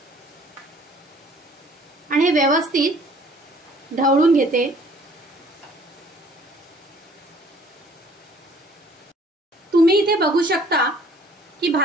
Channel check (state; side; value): normal; both; correlation 0.57